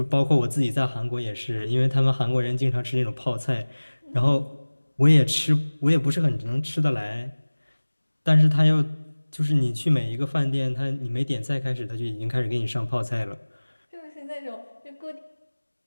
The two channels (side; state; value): both; inverted; correlation -1.00